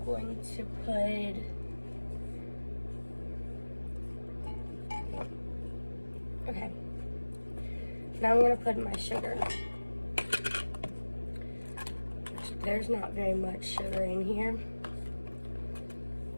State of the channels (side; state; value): both; inverted; correlation -1.00